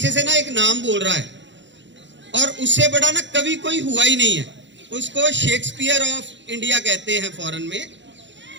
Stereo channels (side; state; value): left; late; 0.53 ms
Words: से ना एक नाम बोल रहा है, और उससे बड़ा ना कवि कोई हुआ ही नहीं है। उसको शेक्सपियर ऑफ इंडिया कहते हैं फॉरेन में।